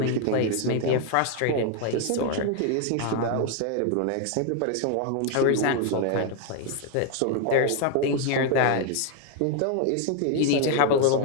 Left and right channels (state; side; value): different; both; correlation 0.01